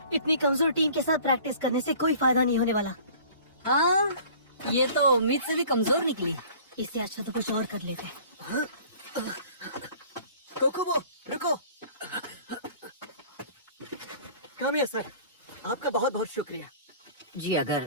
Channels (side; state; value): both; inverted; correlation -0.48